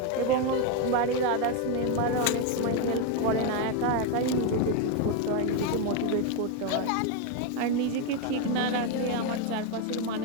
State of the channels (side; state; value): both; different; correlation 0.02